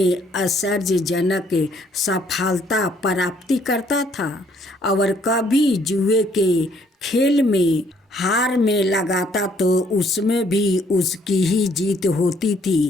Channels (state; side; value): normal; both; correlation 0.65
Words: आश्चर्यजनक सफलता प्राप्ति करता था और कभी जुए के खेल में हार में लगाता तो उसमें भी उसकी ही जीत होती